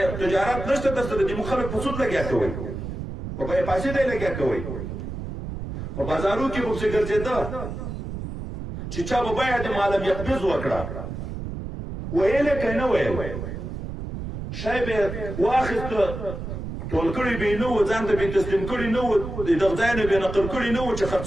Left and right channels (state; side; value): noise; right; rumble, 7 dB below the sound